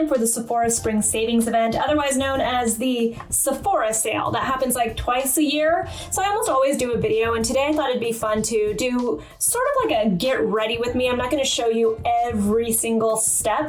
for the Sephora Spring Savings Event, otherwise known as the Sephora Sale. That happens like twice a year, so I almost always do a video, and today I thought it'd be fun to do sort of like a get ready with me. I'm not going to show you every single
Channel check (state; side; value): identical; both; correlation 1.00